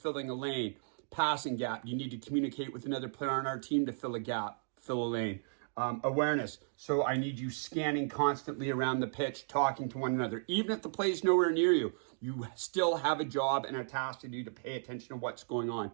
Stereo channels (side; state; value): left; silent; digital silence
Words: a lane? Passing gap. You need to communicate with another player on our team to fill a gap, fill a lane. Awareness. So I need you scanning constantly around the pitch, talking to one another. Even if the play is nowhere near you, you still have a job and a task to do to pay attention to what's going on.